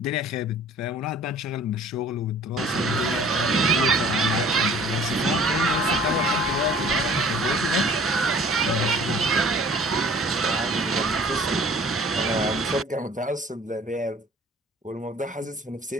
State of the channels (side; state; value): both; normal; correlation 0.50